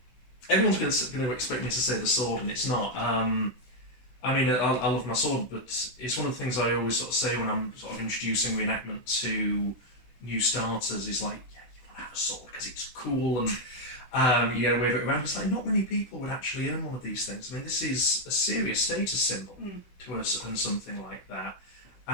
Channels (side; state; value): right; late; 16 ms